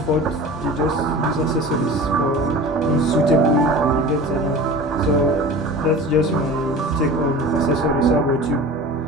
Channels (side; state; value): both; normal; correlation 0.36